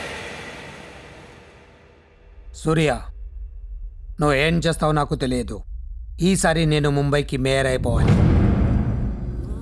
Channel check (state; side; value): identical; both; correlation 1.00